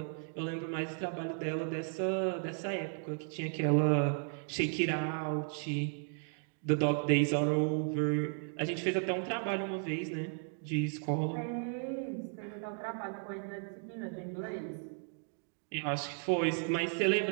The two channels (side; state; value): left; silent; 54 dB below the other